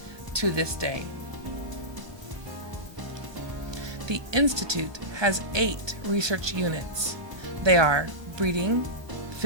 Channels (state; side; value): late; left; 1.3 ms